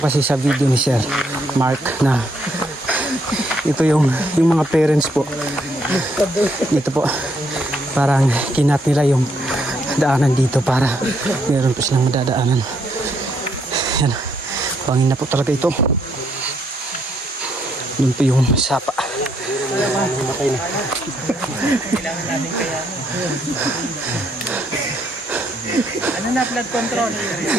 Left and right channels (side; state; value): both; normal; correlation 0.73